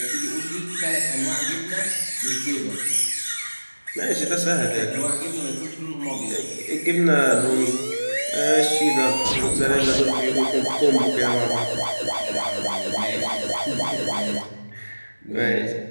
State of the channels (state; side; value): inverted; both; correlation -1.00